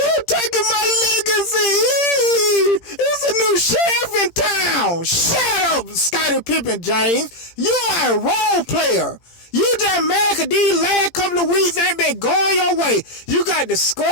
taking my legacy. It's a new sheriff in town. Shut up, Scottie Pippen James. You are a role player. You just mad because these last couple of weeks ain't been going your way. You got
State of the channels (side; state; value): right; late; 17 ms